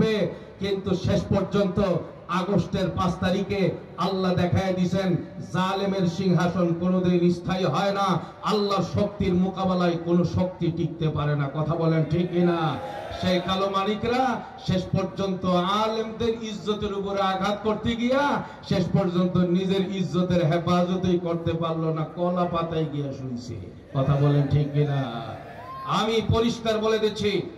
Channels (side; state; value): both; identical; correlation 1.00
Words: কিন্তু শেষ পর্যন্ত আগস্টের 5 তারিখে আল্লাহ দেখায় দিয়েছেন জালেমের সিংহাসন কোনোদিন স্থায়ী হয় না, আল্লাহর শক্তির মোকাবেলায় কোনো শক্তি টিকতে পারে না। কথা বলেন ঠিক কিনা? সেই কালো মানিকরা শেষ পর্যন্ত আলেমদের ইজ্জতের উপরে আঘাত করতে গিয়া শেষ পর্যন্ত নিজের ইজ্জতের হেফাজতই করতে পারলো না, কলা পাতায় গিয়া শুনছে। কথা বলেন ঠিক কিনা? আমি পরিষ্কার বলে দিচ্ছি,